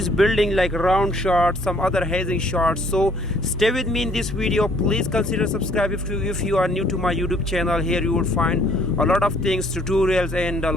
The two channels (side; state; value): both; normal; correlation 0.61